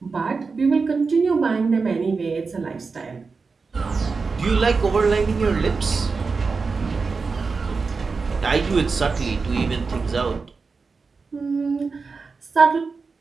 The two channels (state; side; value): quieter; left; 4.6 dB